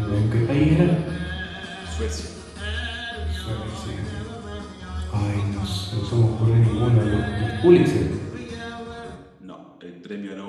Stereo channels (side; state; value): both; identical; correlation 1.00